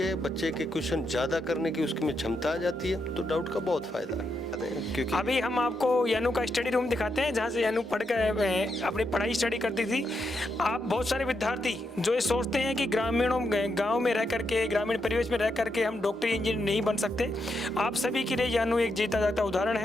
बच्चे के क्वेश्चन ज़्यादा करने की उसकी में क्षमता आ जाती है, तो डाउट का बहुत फ़ायदा है। क्योंकि अभी हम आपको यानू का स्टडी रूम दिखाते हैं, जहाँ से यानू पढ़ कर अपनी पढ़ाई स्टडी करती थी। आप बहुत सारे विद्यार्थी जो ये सोचते हैं कि गांव में रह करके, ग्रामीण परिवेश में रह करके हम डॉक्टर इंजीनियर नहीं बन सकते, आप सभी के लिए यानू एक जीता जाता उदाहरण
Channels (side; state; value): both; normal; correlation 0.82